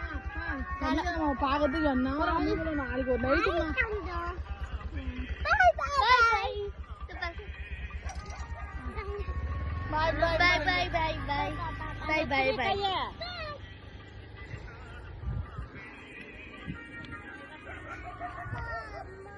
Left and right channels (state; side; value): identical; both; correlation 1.00